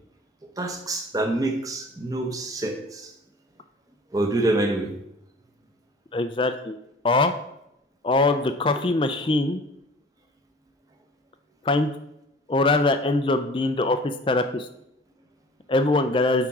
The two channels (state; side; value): normal; both; correlation 0.45